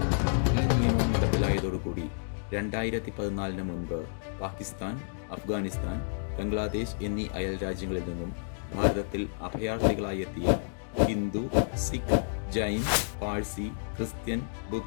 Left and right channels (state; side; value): silent; right; digital silence